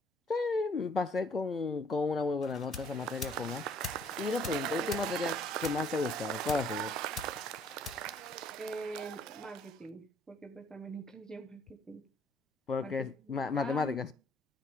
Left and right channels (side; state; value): both; normal; correlation 0.61